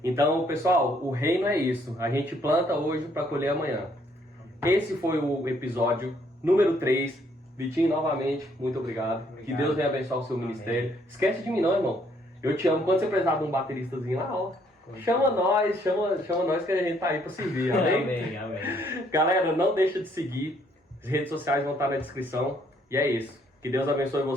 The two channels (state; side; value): normal; both; correlation 0.67